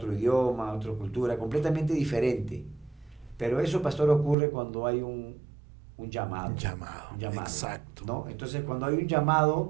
idioma, otra cultura, completamente diferente. Pero eso, pastor, ocurre cuando hay un llamado. Un llamado, exacto. ¿No? Entonces, cuando hay un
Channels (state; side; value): drops out; left; at 4.4 s